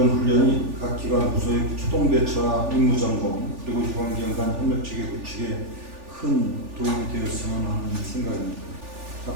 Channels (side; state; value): left; late; 3.4 ms